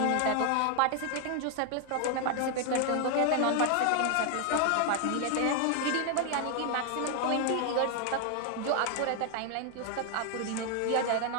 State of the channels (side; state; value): both; different; correlation 0.00